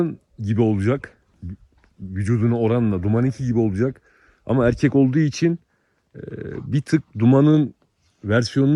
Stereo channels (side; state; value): both; identical; correlation 1.00